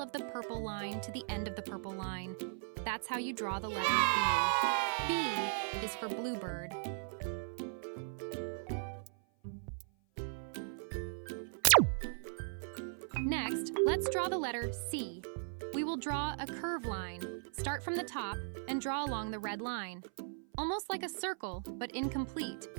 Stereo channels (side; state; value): left; silent; 53 dB below the other